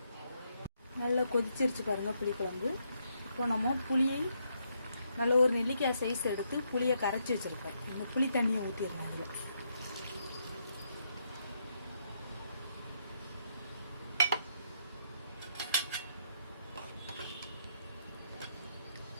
நல்லா கொதிச்சிருச்சு பாருங்க புளி குழம்பு. இப்போ நம்ம புளியை நல்ல ஒரு நெல்லிக்காய் சைஸ் எடுத்து புளியை கரைச்சி வச்சுருக்கேன். இந்த புளி தண்ணியை ஊற்றிடுறேன். அதில்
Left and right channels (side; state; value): both; inverted; correlation -0.77